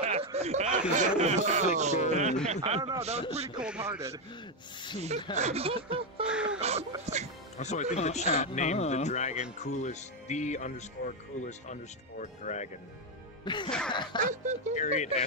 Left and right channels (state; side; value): normal; both; correlation 0.05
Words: don't know, that was pretty cold-hearted. Also, I think the chat named the dragon coolest_coolest_dragon. Period